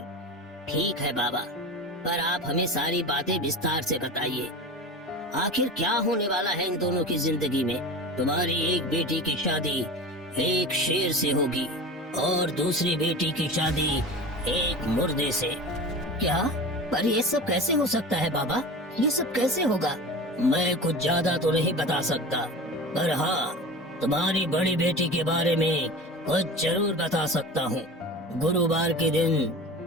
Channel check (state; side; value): normal; both; correlation 0.32